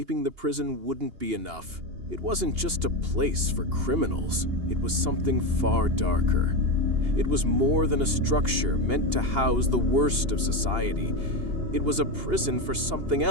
the prison wouldn't be enough. It wasn't just a place for criminals. It was something far darker. It was more than a structure meant to house the worst of society. It was a prison for something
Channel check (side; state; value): left; late; 2.8 ms